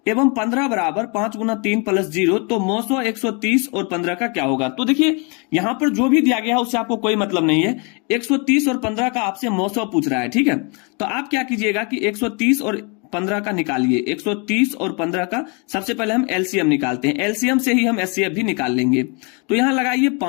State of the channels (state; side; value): quieter; right; 33.7 dB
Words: एवं 15 बराबर 5 गुना 3 प्लस 0, तो मौसो 130 और 15 का क्या होगा। तो देखिए यहां पर जो भी दिया गया है उससे आपको कोई मतलब नहीं है, 130 और 15 का आपसे मौसो पूछ रहा है, ठीक है। तो आप क्या कीजिएगा कि 130 और 15 का निकालिए, 130 और 15 का सबसे पहले हम एलसीएम निकालते हैं। एलसीएम से ही हम एचसीएफ भी निकाल लेंगे। तो यहां लगाइए